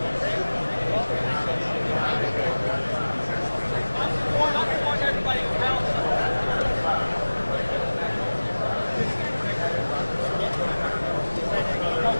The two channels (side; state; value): both; inverted; correlation -1.00